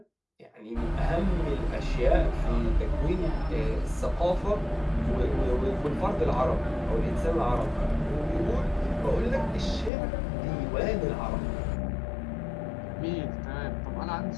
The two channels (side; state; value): right; drops out; at 9.9 s